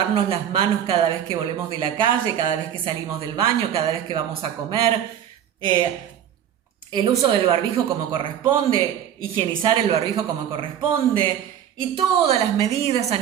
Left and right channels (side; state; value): left; quieter; 9.8 dB